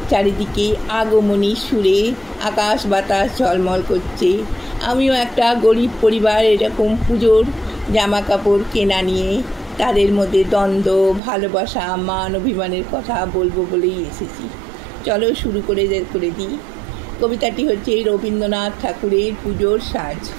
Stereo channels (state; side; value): drops out; left; at 11.2 s